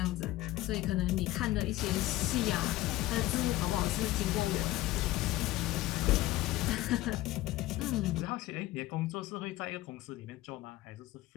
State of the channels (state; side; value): quieter; right; 16.8 dB